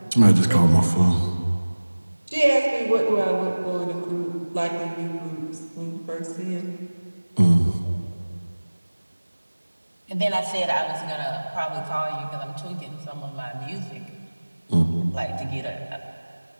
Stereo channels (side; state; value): both; inverted; correlation -1.00